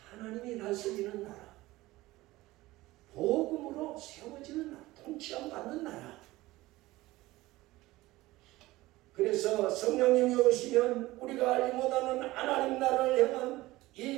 하나님이 다스리는 나라, 복음으로 세워지는 나라, 통치함 받는 나라. 그래서 성령님이 오시면 우리가 알지 못하는 하나님 나라를 향한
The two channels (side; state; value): left; quieter; 18.5 dB